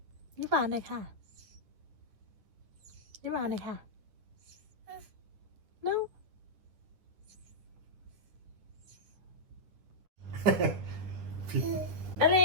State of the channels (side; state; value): left; late; 9.5 ms